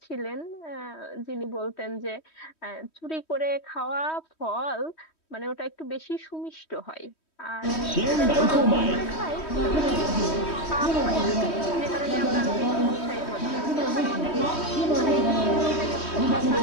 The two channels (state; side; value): late; right; 3.1 ms